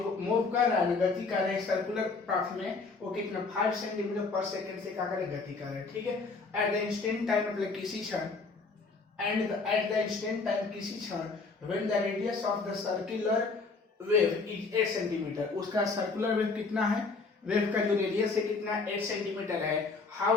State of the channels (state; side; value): quieter; right; 4.2 dB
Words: मूव कर रहा है, गति कर रहे हैं सर्कुलर पाथ में, वो कितना 5 सेंटीमीटर पर सेकंड से क्या करे, गति कर रहे हैं। ठीक है, एट द इंस्टेंट टाइम मतलब किसी क्षण, and at the instant time किसी क्षण, when the radius of the circular wave is 8 centimetre, उसका सर्कुलर वेव कितना है, वेव का जो रेडियस है कितना, 8 सेंटीमीटर है।